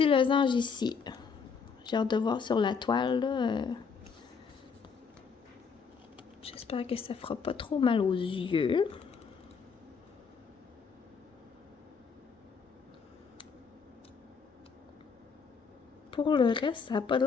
losange ici. J'ai hâte de voir sur la toile, là. J'espère que ça fera pas trop mal aux yeux. Pour le reste, ça n'a pas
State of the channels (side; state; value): right; quieter; 5.7 dB